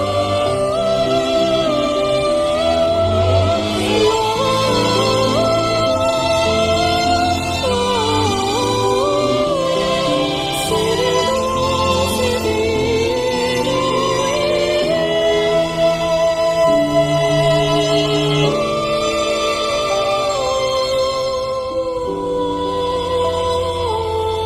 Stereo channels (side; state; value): both; identical; correlation 1.00